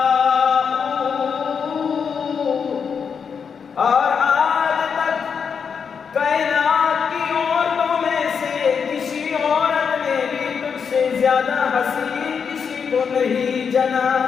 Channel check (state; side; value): quieter; right; 6.4 dB